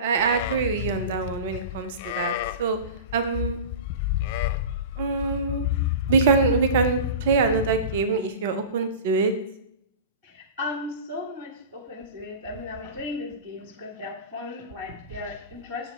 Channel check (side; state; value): both; inverted; correlation -0.31